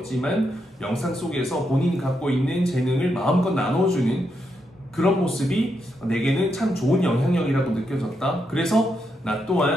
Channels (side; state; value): both; normal; correlation 0.82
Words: 영상 속에서 본인이 갖고 있는 재능을 마음껏 나눠주는 그런 모습이 내게는 참 좋은 영향력이라고 느껴졌다. 그래서 나